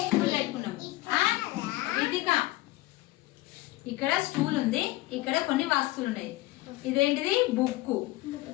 స్టూల్ పెట్టుకున్నాము. ఇదిగా ఇక్కడ స్టూల్ ఉంది, ఇక్కడ కొన్ని వస్తువులు ఉన్నాయి. ఇదేంటిది? బుక్.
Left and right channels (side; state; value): right; quieter; 18.7 dB